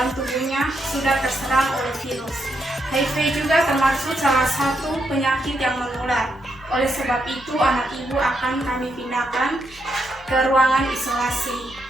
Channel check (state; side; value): normal; both; correlation 0.80